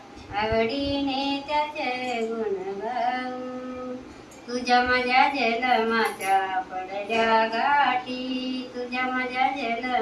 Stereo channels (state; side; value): identical; both; correlation 1.00